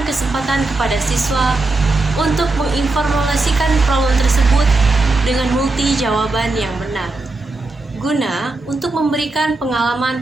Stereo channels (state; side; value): quieter; left; 3.2 dB